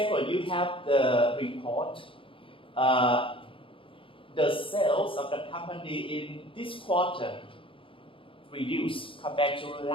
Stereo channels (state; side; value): late; right; 0.25 ms